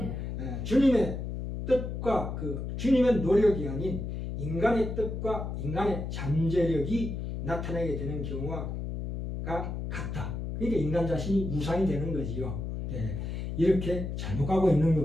주님의 뜻과 주님의 노력이 아닌 인간의 뜻과 인간의 잠재력이 나타나게 되는 경우가 같다. 그러니까 인간 자신이 우상이 되는 거지요. 이렇게 잘못 가고 있는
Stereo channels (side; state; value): left; noise; hum, 5 dB below the sound